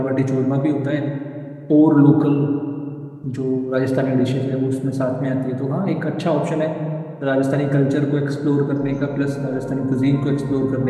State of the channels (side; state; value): both; identical; correlation 1.00